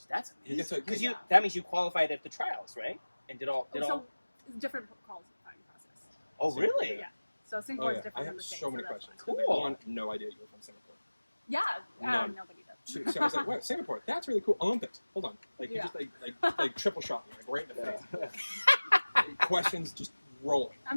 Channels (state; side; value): inverted; both; correlation -1.00